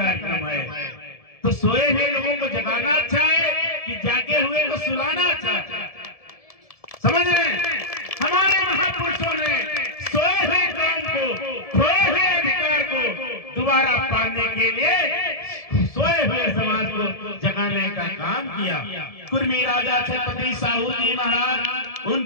है। तो सोए हुए लोगों को जगाना अच्छा है कि जागे हुए को सुलाना अच्छा है? समझ रहे हैं? हमारे महापुरुषों ने सोए हुए कौम को, खोए हुए अधिकार को दोबारा पाने के लिए सोए हुए समाज को जगाने का काम किया। कुर्मी राजा छत्रपति साहू जी महाराज,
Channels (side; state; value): right; late; 1.7 ms